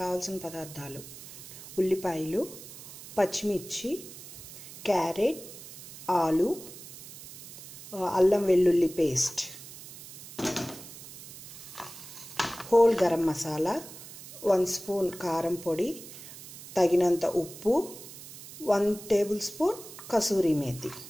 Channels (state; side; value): noise; right; hiss, 15 dB below the sound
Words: పదార్థాలు: ఉల్లిపాయలు, పచ్చిమిర్చి, క్యారెట్, ఆలు, అల్లం వెల్లుల్లి paste, whole garam masala, 1 spoon కారం పొడి, తగినంత ఉప్పు, 1 table spoon kasuri methi,